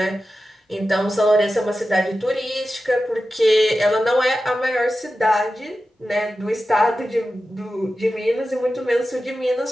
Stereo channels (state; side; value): normal; both; correlation 0.93